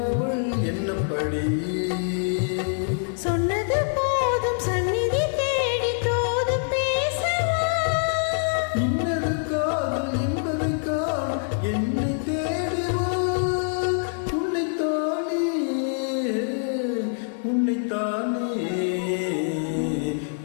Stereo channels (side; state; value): right; silent; digital silence